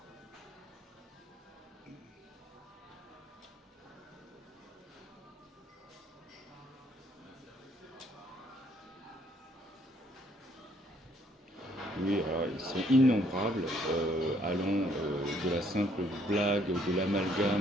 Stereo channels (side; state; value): both; normal; correlation 0.66